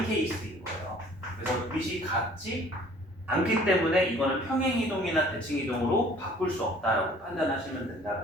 케이스인 거예요. 그래서 밑이 같지 않기 때문에 이거는 평행이동이나 대칭이동으로 바꿀 수 없다라고 판단하시면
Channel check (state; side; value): normal; both; correlation 0.53